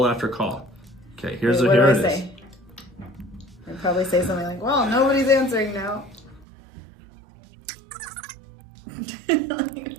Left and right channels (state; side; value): drops out; left; at 6.5 s